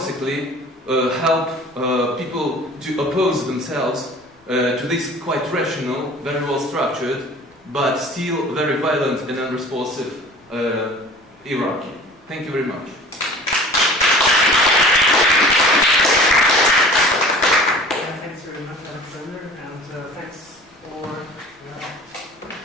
help people to oppose themselves to this quite rational, very well structured, but still very violent and unresponsive hierarchy. Thank you very much. Thanks very much, Alexander, and thanks for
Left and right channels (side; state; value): both; normal; correlation 0.44